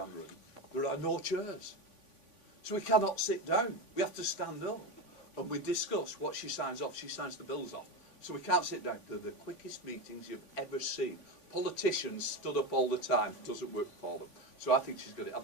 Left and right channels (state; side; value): late; right; 3.5 ms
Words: room. There are no chairs, so we cannot sit down. We have to stand up, and we discuss what she signs off. She signs the bills off, so we can't sit down. They're the quickest meetings you've ever seen. Politicians stood up all the time. It doesn't work for them. So I think she's got it